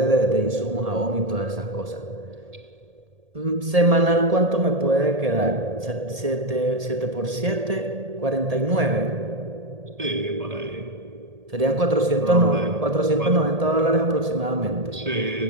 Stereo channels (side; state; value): left; late; 1.8 ms